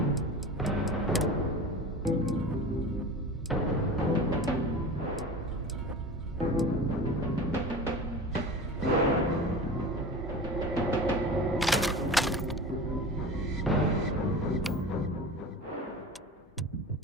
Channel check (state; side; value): normal; both; correlation 0.33